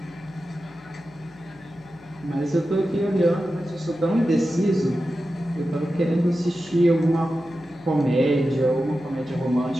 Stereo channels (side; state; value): left; noise; hum, 25 dB below the sound